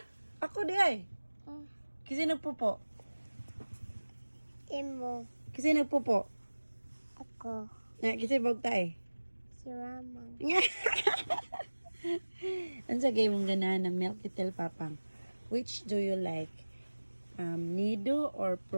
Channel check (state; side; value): inverted; both; correlation -1.00